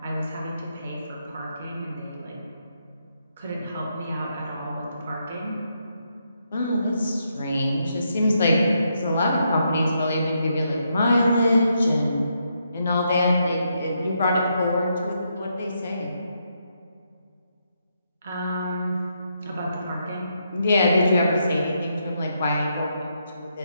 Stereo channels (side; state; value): both; inverted; correlation -0.79